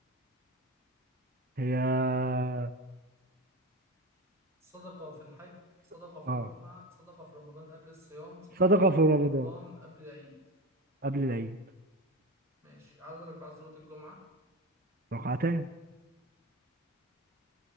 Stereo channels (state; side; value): normal; both; correlation 0.24